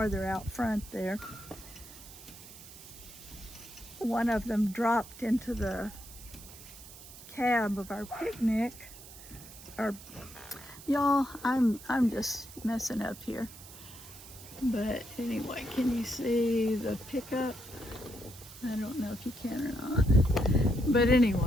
out front there, one of them dropped into the cab of our picnic. Y'all, I'm just messing up here. But anyway, can you see the pickup? I don't know if you can or not. But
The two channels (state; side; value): noise; right; hiss, 17 dB below the sound